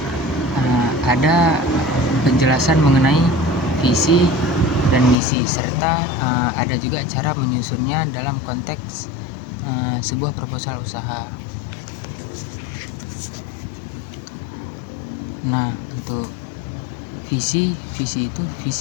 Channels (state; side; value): drops out; right; at 5.2 s